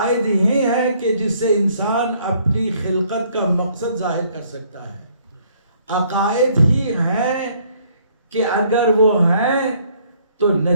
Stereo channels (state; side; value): inverted; both; correlation -0.64